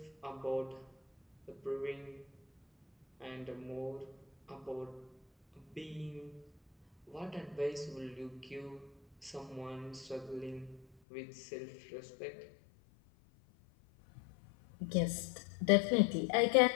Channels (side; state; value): right; drops out; at 10.9 s